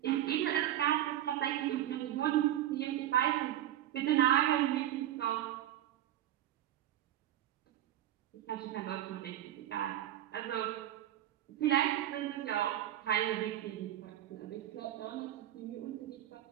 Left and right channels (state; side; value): quieter; left; 12.5 dB